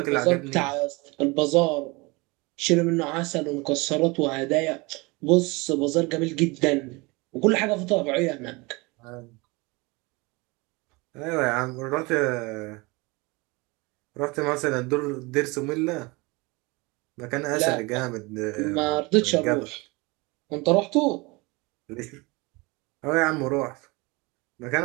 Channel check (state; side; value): quieter; left; 25.5 dB